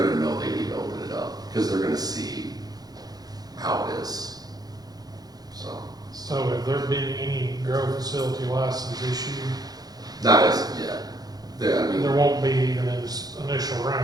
know they need to open it up, because they're gonna see how it is. So have there been any grow facility license issued? Not as of yet. I mean, There won't be even in this initial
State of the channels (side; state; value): left; late; 0.19 ms